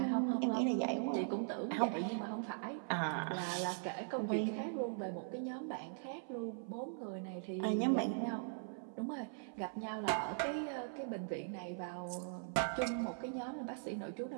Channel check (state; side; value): silent; left; 51 dB below the other